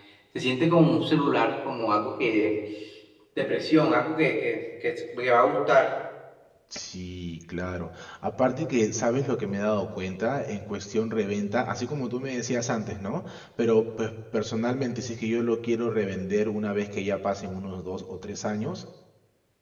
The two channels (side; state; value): both; identical; correlation 1.00